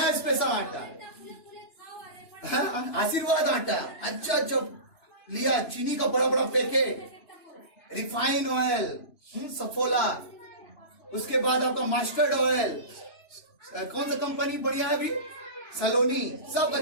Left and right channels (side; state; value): right; late; 3.0 ms